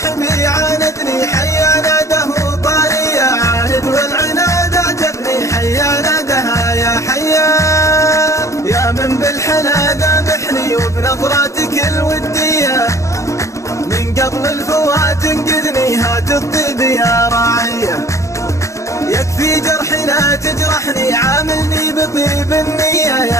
عاندني حيا ناده طارية، عاند والعناد اعجبني حيا نادها يا حيا. يا من بالحلا ذابحني وبنظراتك الودية، من قبل الفوات انقذني هات الطيب يا راعية. يكفي جرحي لا تجرحني عاملني بطيب النية،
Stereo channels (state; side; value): late; right; 0.15 ms